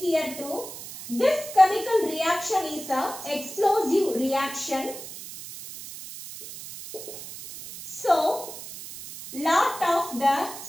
too. This chemical reaction is a explosive reaction. So, lot of the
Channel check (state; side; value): noise; right; hiss, 12 dB below the sound